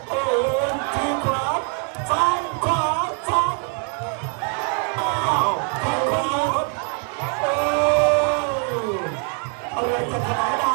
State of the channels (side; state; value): left; quieter; 39.7 dB